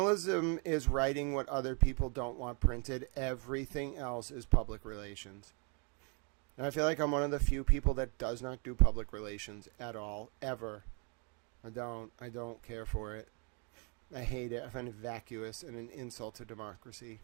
is writing what other people don't want printed. Everything else is public relations. And I feel like I'm one of the few people that does not do public relations at all, ever. I don't care for it. I hate it. I find it vacuous and an insult to democracy.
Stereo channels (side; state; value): left; quieter; 36.0 dB